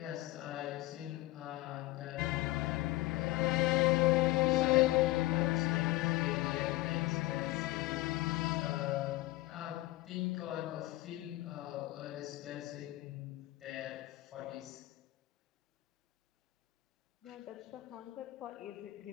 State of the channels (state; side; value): quieter; right; 18.6 dB